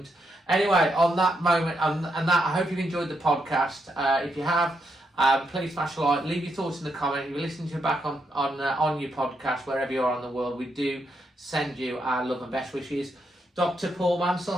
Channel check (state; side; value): normal; both; correlation 0.80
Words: Anyway, on that moment, and that, I hope you've enjoyed the podcast. If you have, please smash a like, leave your thoughts in the comment. If you're listening to it back on your podcast, wherever you are in the world, we do send you our love and best wishes. Dr. Paul Mansell,